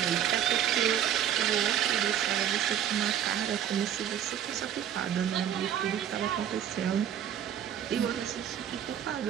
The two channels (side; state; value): left; quieter; 9.8 dB